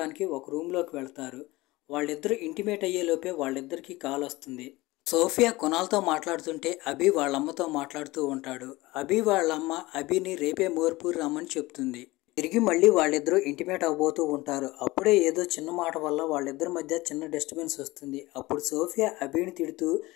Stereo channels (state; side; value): quieter; right; 20.3 dB